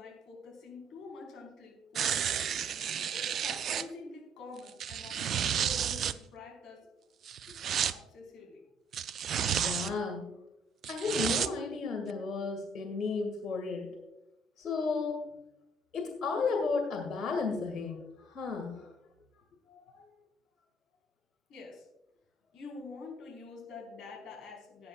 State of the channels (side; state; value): both; normal; correlation 0.63